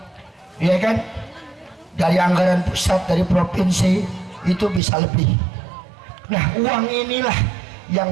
ya kan, dari anggaran pusat, dari provinsi, itu bisa lebih. Nah, uang inilah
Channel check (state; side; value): drops out; left; at 4.8 s